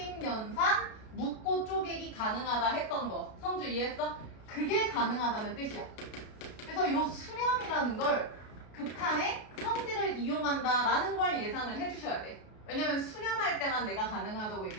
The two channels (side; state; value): right; late; 33 ms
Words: 연산 묶고 쪼개기 가능하다 했던 거. 성주 이해했어? 그게 가능하다는 뜻이야. 그래서 요 수렴이라는 걸 극한의 성질을 이용한다라는 걸 예상을 해주셔야 돼. 왜냐면 수렴할 때만 내가 가능하다고